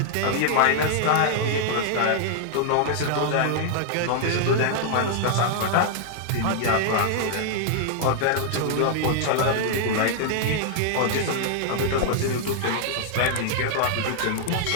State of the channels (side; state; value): both; different; correlation 0.00